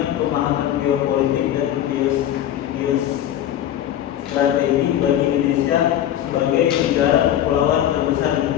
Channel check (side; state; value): right; quieter; 11.4 dB